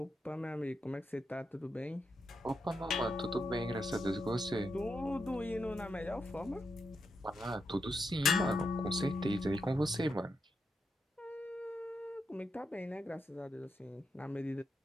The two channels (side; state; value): both; normal; correlation 0.84